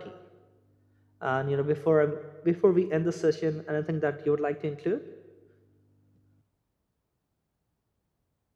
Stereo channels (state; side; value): identical; both; correlation 1.00